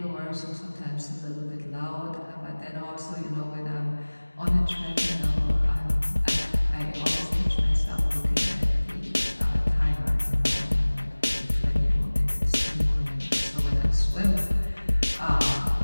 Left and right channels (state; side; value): inverted; both; correlation -1.00